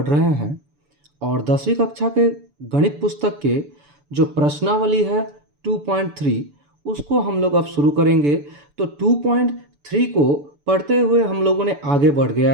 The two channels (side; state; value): left; late; 6.9 ms